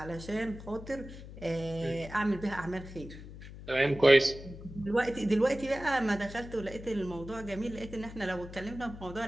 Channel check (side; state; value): left; noise; hum, 14 dB below the sound